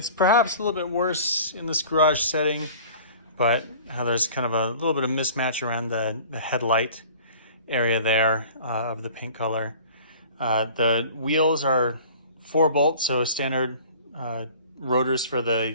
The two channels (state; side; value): inverted; both; correlation -0.46